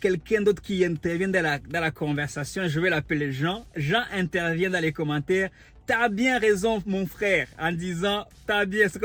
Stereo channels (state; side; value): identical; both; correlation 1.00